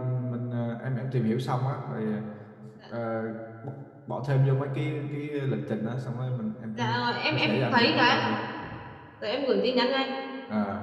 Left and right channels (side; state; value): both; identical; correlation 1.00